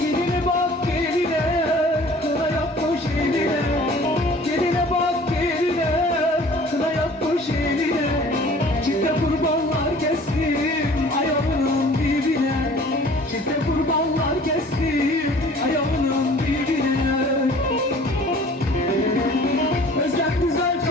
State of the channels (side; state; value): both; normal; correlation 0.49